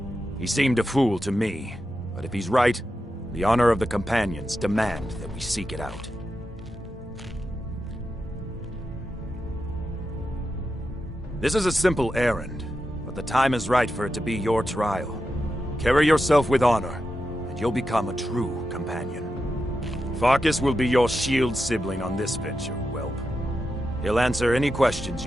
He seemed a fool to me, but if he's right, the honor of the Companions demand that we seek it out. This is a simple errand, but the time is right for it to be your trial. Carry yourself with honor, and you'll become a true companion. Farkas will be your shield sibling on this venture, whelp. He'll answer any questions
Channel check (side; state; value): both; normal; correlation 0.89